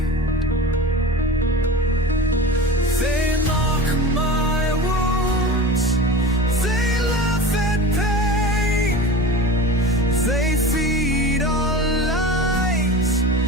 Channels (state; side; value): normal; both; correlation 0.32